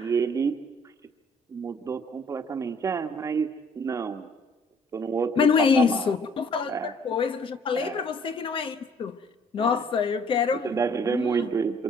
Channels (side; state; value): both; normal; correlation 0.59